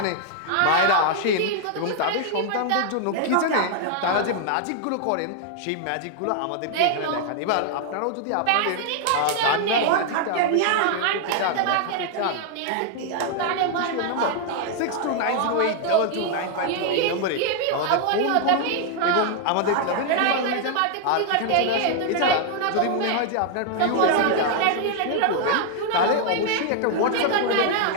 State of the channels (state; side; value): different; both; correlation 0.00